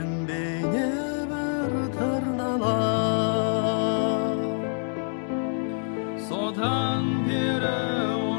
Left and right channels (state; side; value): silent; right; 61 dB below the other